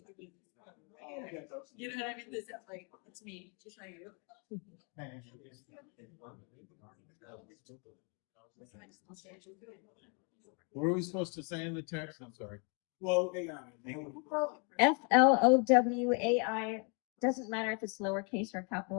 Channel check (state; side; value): quieter; right; 36.0 dB